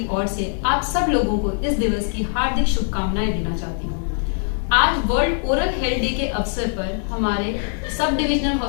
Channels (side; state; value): right; silent; 64 dB below the other